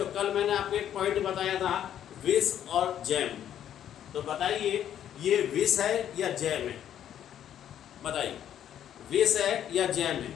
कल मैंने आपको एक पॉइंट बताया था विष और जैम, तो बताइए ये विष है या जैम है? बताइए, विष है या जैम है?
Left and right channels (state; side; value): quieter; right; 10.3 dB